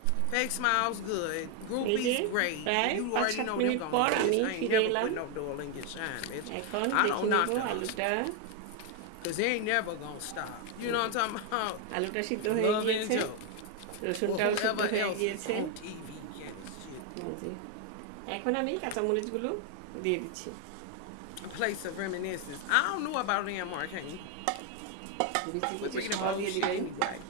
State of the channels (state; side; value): different; both; correlation 0.01